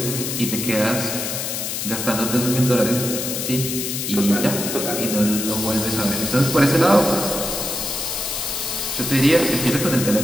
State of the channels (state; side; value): noise; left; hiss, 3 dB below the sound